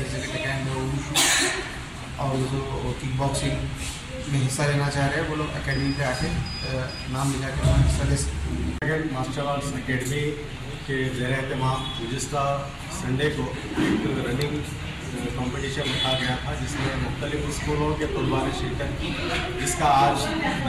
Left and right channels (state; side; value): identical; both; correlation 1.00